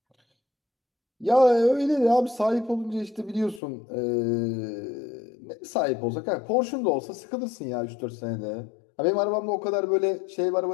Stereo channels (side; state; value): right; drops out; at 3.6 s